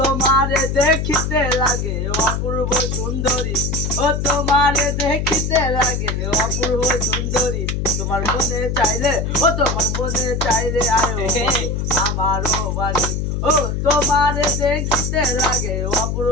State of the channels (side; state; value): left; noise; hum, 1 dB below the sound